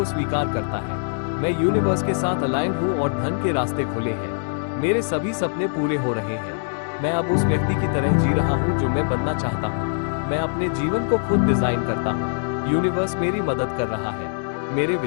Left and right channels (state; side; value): silent; right; digital silence